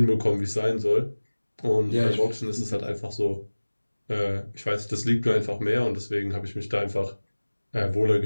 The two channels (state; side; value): inverted; both; correlation -1.00